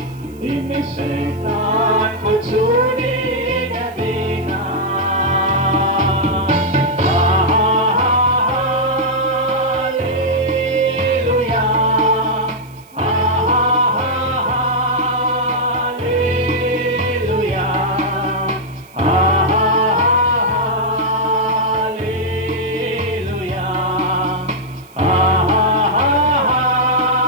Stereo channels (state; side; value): noise; right; hiss, 28 dB below the sound